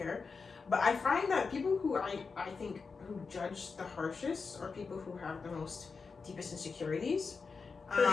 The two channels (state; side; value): quieter; right; 4.9 dB